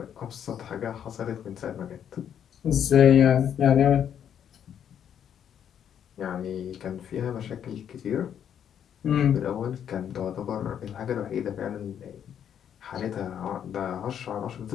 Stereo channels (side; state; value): right; quieter; 9.1 dB